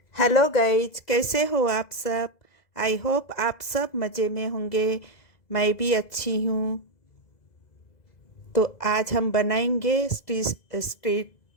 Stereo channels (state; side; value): late; right; 2.0 ms